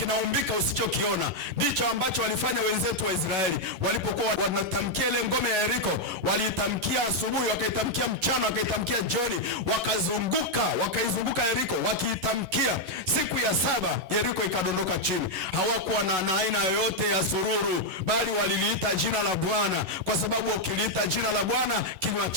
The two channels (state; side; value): late; left; 11 ms